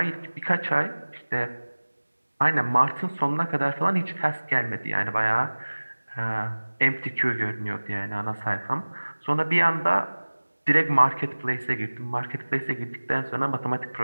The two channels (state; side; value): inverted; both; correlation -1.00